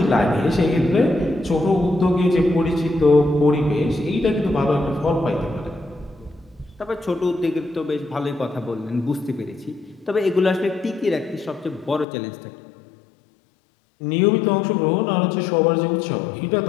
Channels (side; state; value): right; drops out; at 12.1 s